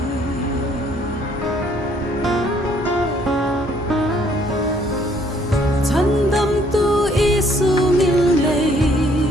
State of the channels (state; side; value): normal; both; correlation 0.64